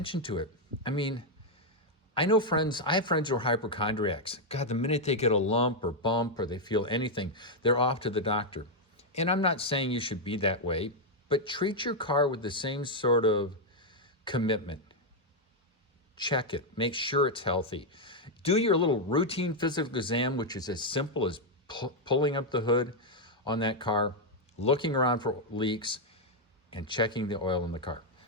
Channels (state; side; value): normal; both; correlation 0.00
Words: to it. I mean, I have friends who are hypochondriacs. God, the minute they get a lump or bump or they feel anything, they're off to the doctor. And I'm not saying you should be that way, but treat your car with the same sort of commitment. Check it, make sure it's healthy. Do your little routine physical exam, which is as simple as pulling up the hood on that car, looking around for leaks, and checking the oil in the car.